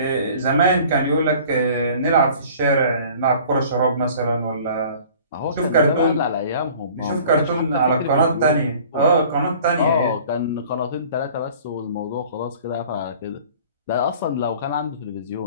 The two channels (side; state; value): both; inverted; correlation -0.49